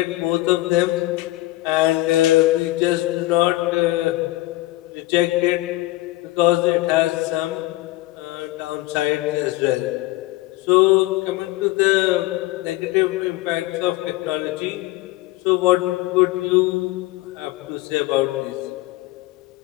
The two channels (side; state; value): right; quieter; 18.4 dB